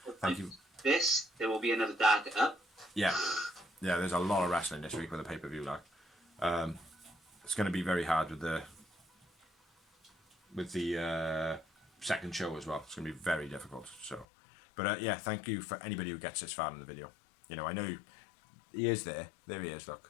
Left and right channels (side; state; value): right; drops out; at 14.2 s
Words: Thank you. There will be another Dark up. Yeah, there's a lot of wrestling this week with the pay-per-view. Like, it's going to be very hard with the second show as well. It's going to be very difficult. So, but yeah, thank you for anybody who gets this far in the video. You know, I know he is there. There he is.